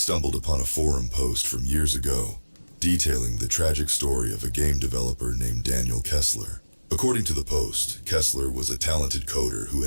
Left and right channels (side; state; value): both; inverted; correlation -1.00